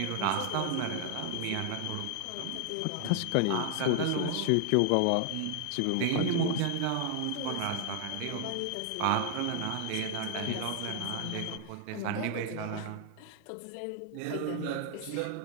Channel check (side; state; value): both; different; correlation 0.00